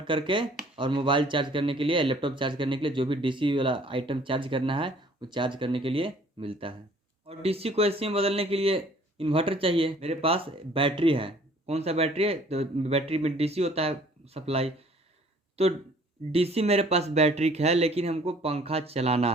करके और मोबाइल चार्ज करने के लिए, लैपटॉप चार्ज करने के लिए, जो भी डीसी वाला आइटम चार्ज करना है वो चार्ज करने के लिए मिलता है। और डीसी को एसी में बदलने के लिए इन्वर्टर चाहिए। मेरे पास बैटरी है, कौन सा बैटरी है, तो बैटरी में डीसी होता है सप्लाई, तो डीसी मेरे पास बैटरी है, लेकिन हमको पंखा चलाना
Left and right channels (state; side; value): normal; both; correlation 0.56